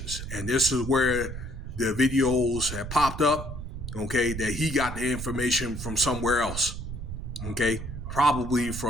and this is where the videos have popped up. Okay, that he got the information from somewhere else. Okay, probably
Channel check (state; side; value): noise; right; rumble, 7 dB below the sound